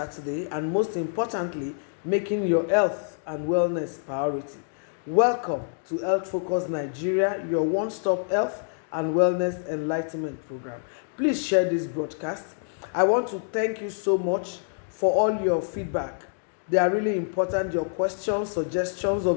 and, most importantly, making your health and wellness priority. Welcome to Health Focus Nigeria, your one stop health and wellness enlightenment program. Please share this broadcast. I want to thank you so much for all your feedback. They are really important. Your questions, suggestions,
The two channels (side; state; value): right; silent; digital silence